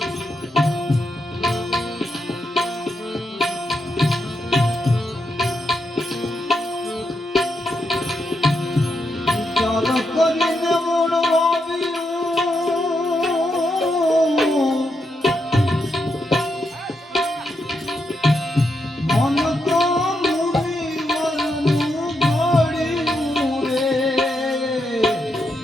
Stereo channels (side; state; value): both; normal; correlation 0.82